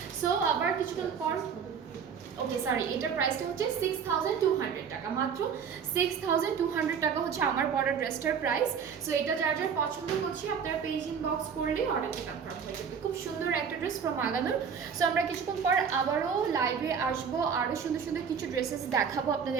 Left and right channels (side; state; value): left; quieter; 6.9 dB